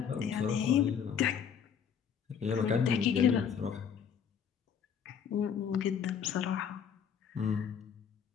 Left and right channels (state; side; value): quieter; right; 7.5 dB